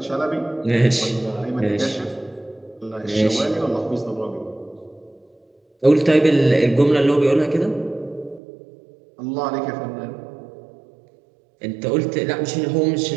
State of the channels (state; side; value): drops out; left; at 8.4 s